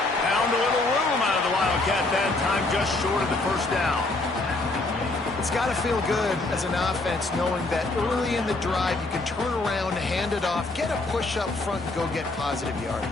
Found a little room out of the Wildcat that time, just short of the first down. It's got to feel good as an offense knowing that early in the drive you can turn around, hand it off, get a push up front, and go get positive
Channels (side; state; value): right; quieter; 3.0 dB